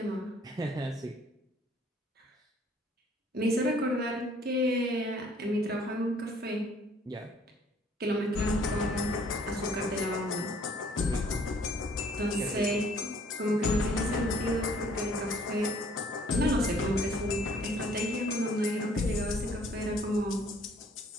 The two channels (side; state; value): both; normal; correlation 0.59